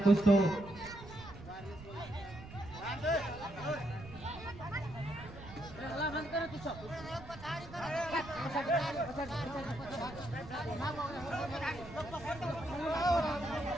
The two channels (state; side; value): noise; right; rumble, 15 dB below the sound